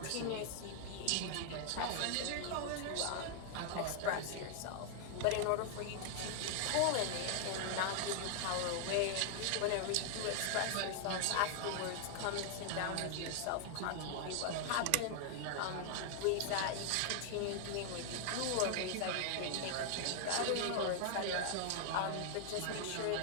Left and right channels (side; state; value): both; different; correlation 0.00